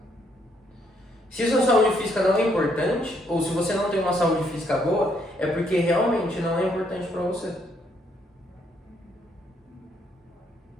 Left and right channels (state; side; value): normal; both; correlation 0.71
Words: Se a sua saúde física não é importante, ou se você não tem uma saúde física boa, é porque realmente não é importante para você.